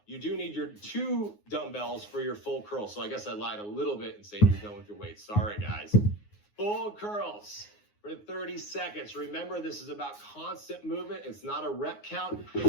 you do need your 2 dumbbells for your full curl. So I guess I lied a little bit in saying you're done with your weights. Sorry, guys. Full curls for 30 seconds. Remember, this is about constant movement. It's not a rep count.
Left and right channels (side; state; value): right; late; 9.6 ms